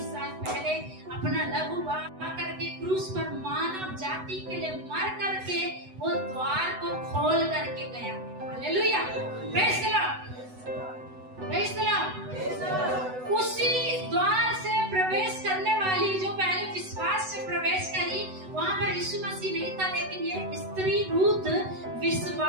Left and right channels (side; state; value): left; late; 8.0 ms